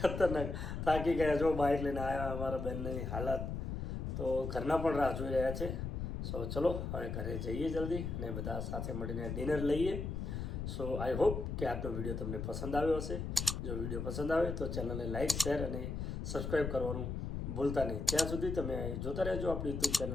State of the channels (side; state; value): left; noise; rumble, 4 dB below the sound